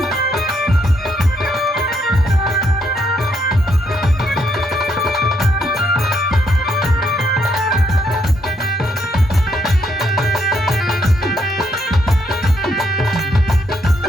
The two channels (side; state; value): both; normal; correlation 0.74